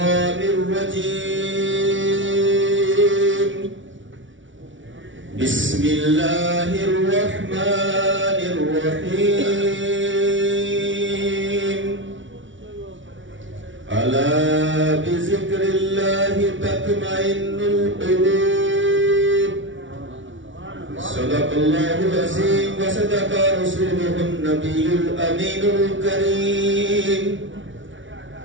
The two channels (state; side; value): late; left; 0.56 ms